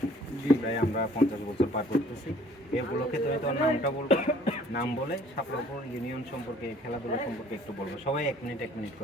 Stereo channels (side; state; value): both; normal; correlation 0.55